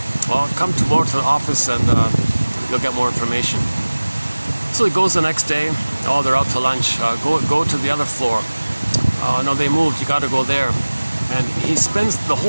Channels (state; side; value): inverted; both; correlation -1.00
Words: "Well, come tomorrow to the office and you'll get more information." So he goes the next day. "Oh, they're out to lunch. Go to the other floor." "Oh, no, they moved. You got to go there." And he spends the